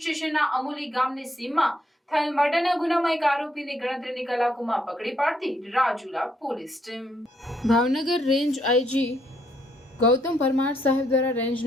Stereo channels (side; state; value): both; normal; correlation 0.73